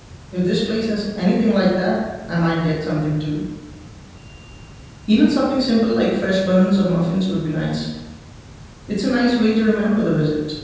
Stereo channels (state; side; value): identical; both; correlation 1.00